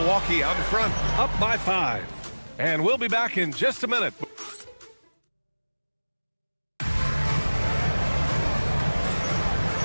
out in front, up by 5. And we'll be back in just a minute.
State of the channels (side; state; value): both; inverted; correlation -1.00